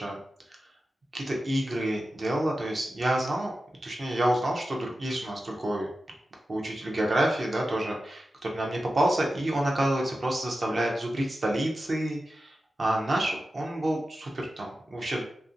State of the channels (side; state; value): both; normal; correlation 0.93